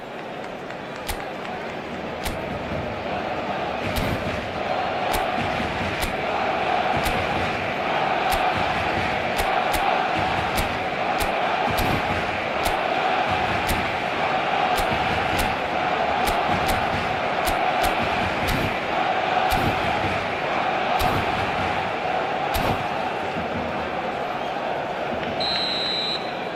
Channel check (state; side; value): identical; both; correlation 1.00